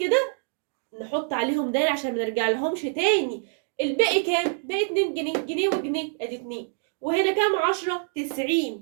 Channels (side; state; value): left; silent; 61 dB below the other